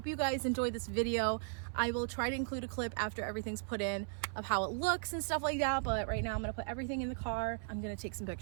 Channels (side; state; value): left; silent; 53 dB below the other